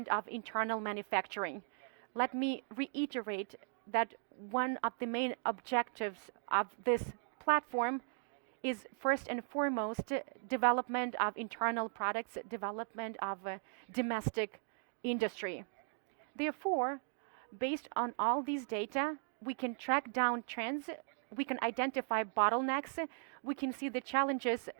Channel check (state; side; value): silent; left; digital silence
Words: of internal manufacturing. Let me reiterate that one of the main objectives of this platform is first and foremost development of internal products, development of domestic industry. Therefore, based on all these data, we can track down trends, we can identify bottlenecks, we can see the challenges